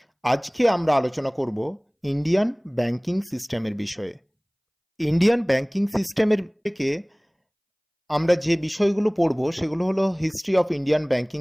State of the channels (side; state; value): both; identical; correlation 1.00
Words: আজকে আমরা আলোচনা করব ইন্ডিয়ান ব্যাংকিং সিস্টেমের বিষয়ে। ইন্ডিয়ান ব্যাংকিং সিস্টেমের থেকে আমরা যে বিষয়গুলো পড়ব সেগুলো হলো history of Indian banking